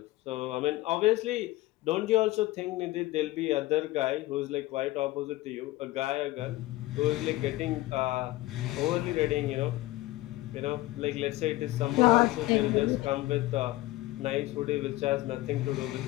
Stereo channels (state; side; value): quieter; right; 18.2 dB